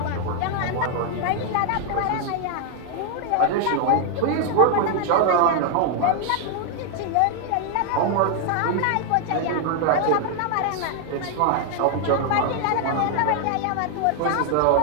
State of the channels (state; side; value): different; both; correlation 0.00